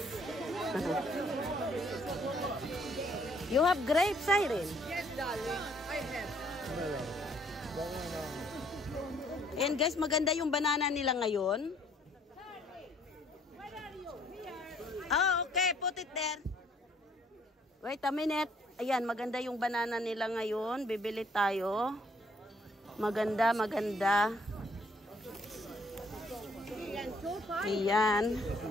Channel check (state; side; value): normal; both; correlation 0.63